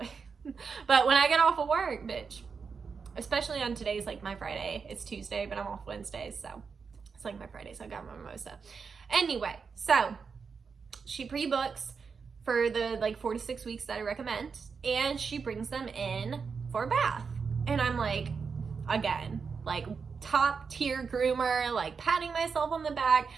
but when I get off of work, bitch, especially on today's like my Friday. It's Tuesday, but I'm off Wednesdays, so it's like my Friday, so I got my mimosa. Anyway, so she pre-books for the like 4 to 6 weeks that I recommend, and she brings them in for a bath. And I'm like, again, like top tier groomer, like patting myself on the back,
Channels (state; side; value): quieter; left; 5.5 dB